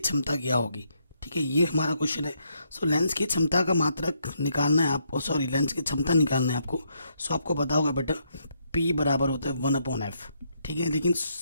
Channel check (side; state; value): both; inverted; correlation -0.75